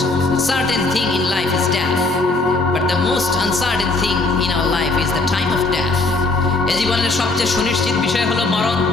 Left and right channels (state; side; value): quieter; right; 3.3 dB